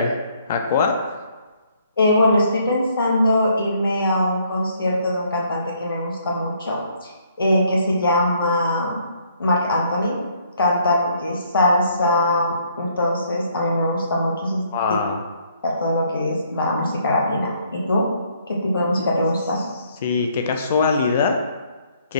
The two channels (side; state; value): both; inverted; correlation -0.66